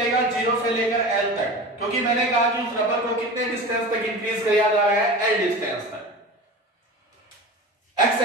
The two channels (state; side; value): normal; both; correlation 0.32